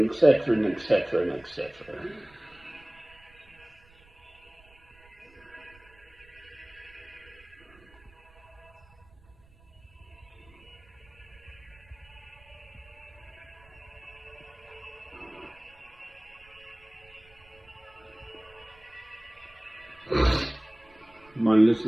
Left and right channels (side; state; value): right; noise; rumble, 27 dB below the sound